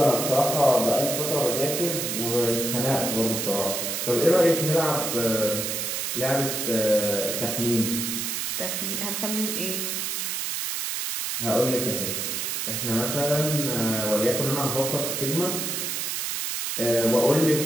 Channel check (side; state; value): right; noise; hiss, 2 dB below the sound